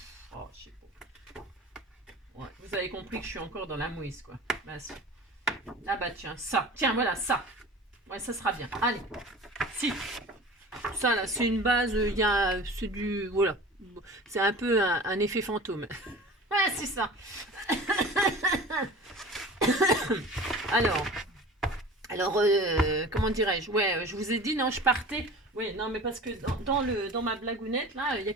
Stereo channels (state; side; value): normal; both; correlation 0.39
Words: Oh, je sais pas. Ouais, vous avez compris que je suis encore dans la mouise, quoi. Bah, ça. Ah, bah, tiens, ça. Tiens, voilà, ça. Ouais, ça sera bien. Allez. Si. Ça, là, c'est une base. Il y a. C'est du. Voilà. C'est un peu un effet fantôme. Ouais, c'est ça. Alors, comment dirais-je? Ouais, je vous ai dit, non, je partais. Oui, non, mais parce que dans ma blagounette, là, il y a